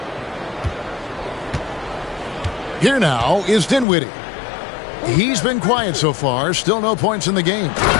Here now is Dinwiddie. He's been quiet so far. Still no points in the game.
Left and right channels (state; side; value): drops out; right; at 3.9 s